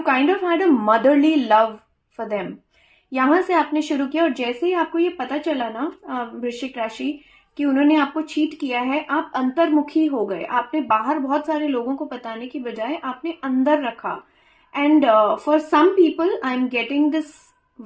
kind of had a motherly love for them. यहां से आपने शुरू किया और जैसे ही आपको ये पता चला ना वृश्चिक राशि कि उन्होंने आपको चीट किया है, आप अंतर्मुखी हो गए। आपने बाहर बहुत सारे लोगों को बताने की बजाय आपने अंदर रखा। And for some people I am getting this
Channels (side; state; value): both; identical; correlation 1.00